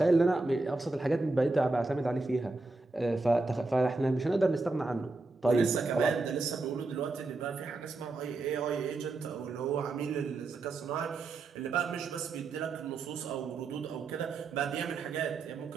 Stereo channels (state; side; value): quieter; left; 3.4 dB